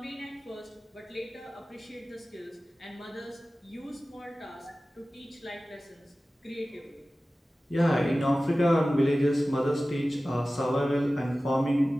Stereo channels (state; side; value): normal; both; correlation 0.96